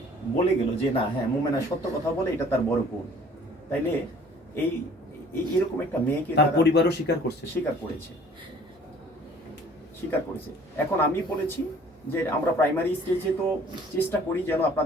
বলে গেল যে না, হ্যাঁ মোমেনা সত্য কথা বলে, এটা তার বড় গুণ। তাইলে এই এরকম একটা মেয়েকে তার পরিবারও স্বীকার করেছে। এখন আমি বলেছি যে আমরা প্রাইমারি স্টেজে তো চেষ্টা করি যেন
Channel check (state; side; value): normal; both; correlation 0.53